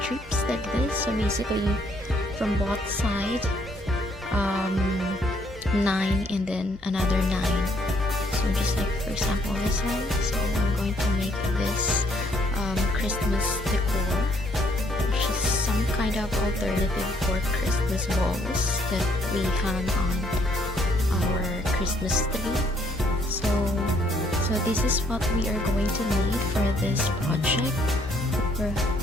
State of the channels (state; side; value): normal; both; correlation 0.68